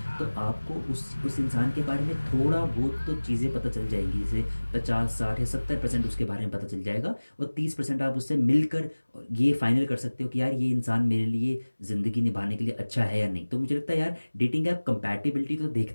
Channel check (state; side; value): inverted; both; correlation -1.00